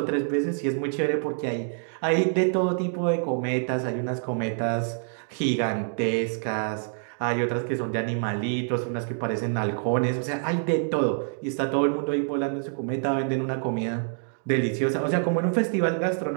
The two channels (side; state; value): left; silent; digital silence